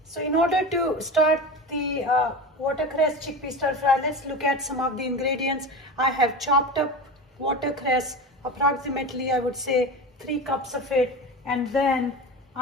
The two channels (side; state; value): both; normal; correlation 0.27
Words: in order to start the watercress chickpea stir fry, let's look at some of the ingredients. I have chopped up watercress, approximately I would say 3 cups of it, and then